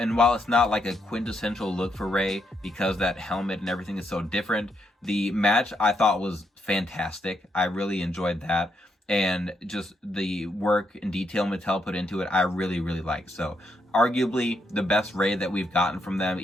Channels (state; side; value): normal; both; correlation 0.78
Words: while it's not like a quintessential look for Rey, because that helmet and everything is so different, the match I thought was fantastic. I really enjoyed that. And just the work and detail Mattel put into it, I really, really like. So arguably the best Rey that we've gotten from them,